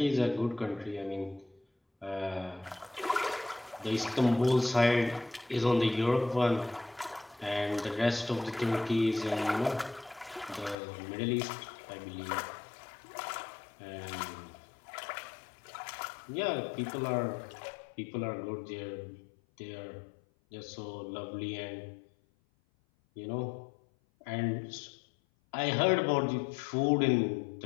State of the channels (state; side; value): drops out; right; at 10.8 s